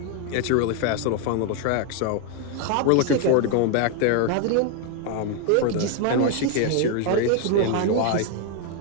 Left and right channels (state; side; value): different; both; correlation 0.01